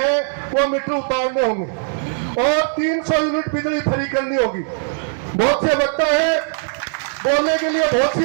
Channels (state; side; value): silent; left; digital silence